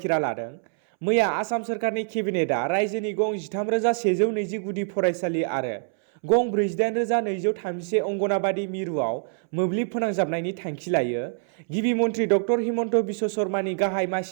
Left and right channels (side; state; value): left; silent; 62 dB below the other